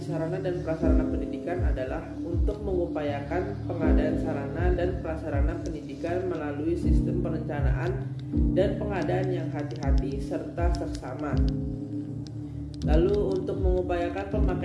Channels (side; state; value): both; identical; correlation 1.00